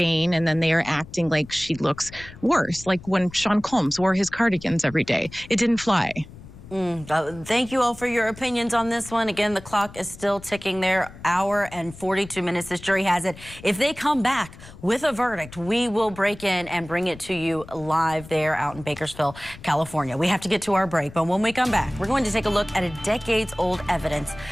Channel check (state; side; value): noise; left; rumble, 18 dB below the sound